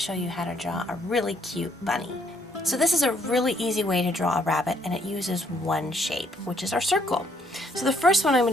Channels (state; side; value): normal; both; correlation 0.69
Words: you how to draw a really cute bunny. So this is a really easy way to draw a rabbit, and it uses one shape, which is our circle. So the first one I'm